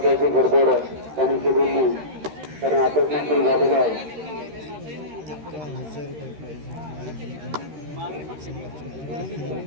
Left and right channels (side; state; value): left; late; 13 ms